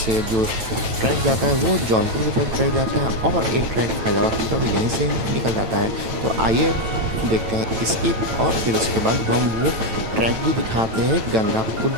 जो ट्रैक जाता है वो जौनपुर की तरफ ट्रैक जाता है और एक ट्रैक फैजाबाद की तरफ यहीं से निकल जाता है। तो आइए देखते हैं इसकी, और फिर उसके बाद हम वो ट्रैक भी दिखाते हैं गंगा पुल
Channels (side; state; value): left; late; 9.0 ms